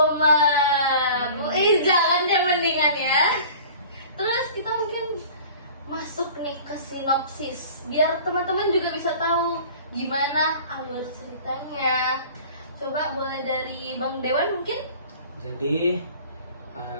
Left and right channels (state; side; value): inverted; both; correlation -0.44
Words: Jangan deh mendingan ya. Terus kita mungkin masuk nih ke sinopsis biar teman-teman juga bisa tahu gimana alur ceritanya. Coba boleh dari Bang Dewan mungkin? Jadi